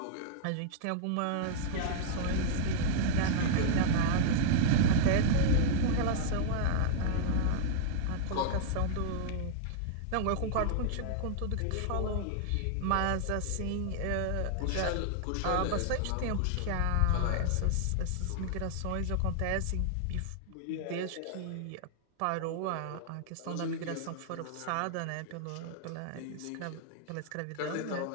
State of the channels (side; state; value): both; different; correlation -0.01